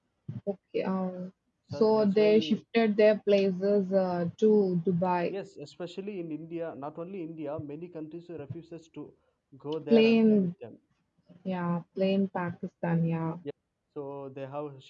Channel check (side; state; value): both; identical; correlation 1.00